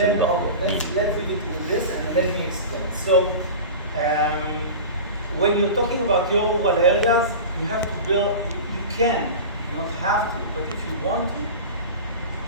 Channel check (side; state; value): both; inverted; correlation -0.31